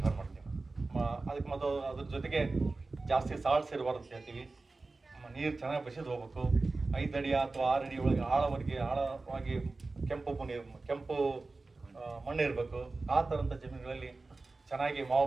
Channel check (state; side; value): quieter; left; 3.5 dB